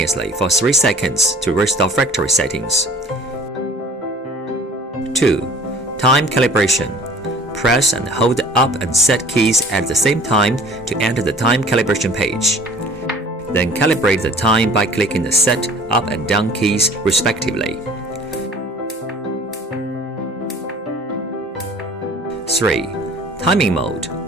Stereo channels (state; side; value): normal; both; correlation 0.49